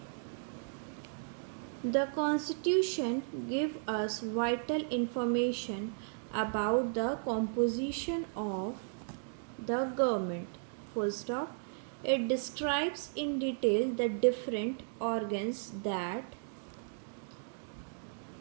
the constitution gives us vital information about the composition of the government. Full stop. It describes in detail the different organs that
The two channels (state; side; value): silent; left; digital silence